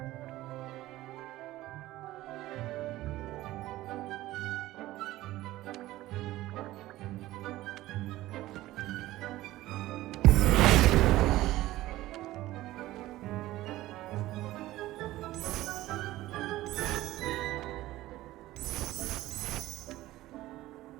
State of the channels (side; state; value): left; quieter; 16.4 dB